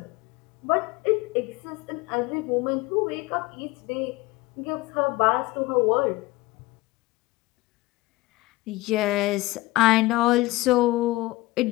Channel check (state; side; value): quieter; right; 19.8 dB